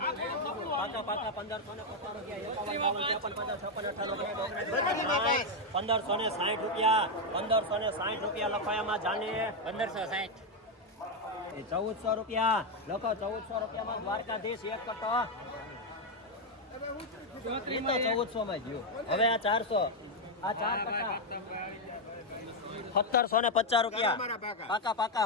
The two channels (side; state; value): both; normal; correlation 0.03